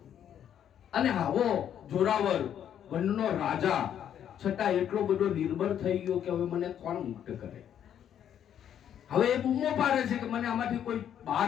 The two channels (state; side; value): quieter; right; 9.7 dB